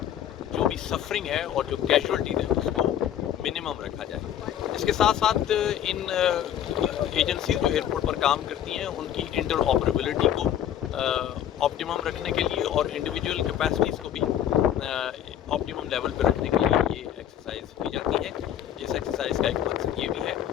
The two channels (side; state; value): right; quieter; 10.5 dB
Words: جو بھی سفرنگ ہے اور جو کیجولٹیز ہیں اس کو منیمم رکھا جائے۔ اس کے ساتھ ساتھ ان ایجنسیز جو ایئرپورٹ پر کام کرتی ہیں ان کی انٹر آپریبلٹی کو آپٹیمم رکھنے کے لیے اور انڈیویجول کیپیسٹیز کو بھی آپٹیمم لیول پہ رکھنے کے لیے یہ ایکسرسائز کی جاتی ہے۔ اس ایکسرسائز کا ایک مقصد یہ بھی ہے